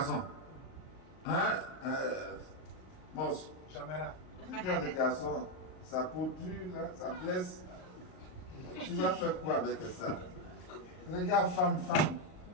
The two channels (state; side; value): late; right; 39 ms